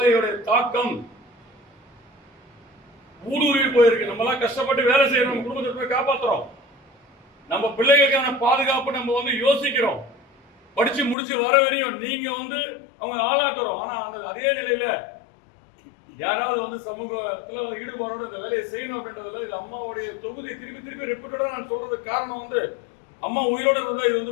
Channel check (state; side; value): drops out; right; at 11.2 s